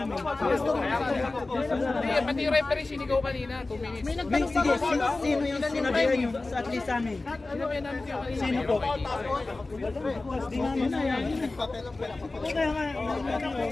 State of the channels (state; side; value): quieter; right; 3.3 dB